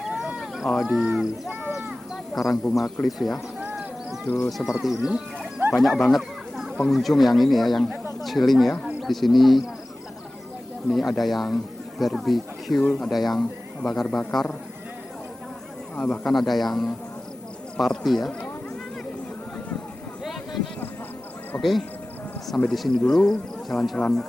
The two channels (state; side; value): normal; both; correlation 0.97